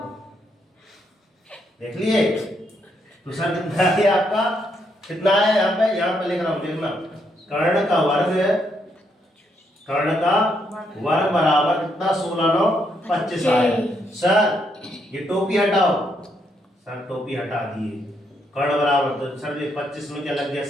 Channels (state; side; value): normal; both; correlation 0.76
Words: देख लिए। तो सर कितना है आपका? कितना है यहाँ पे लिख रहा हूँ, देखना। कर्ण का वर्ग है, कर्ण का वर्ग बराबर कितना? 16 9 25 आया। सर ये टोपी हटाओ, सर टोपी हटा दिए, कर्ण बराबर, तो सर ये 25 में क्या लग गया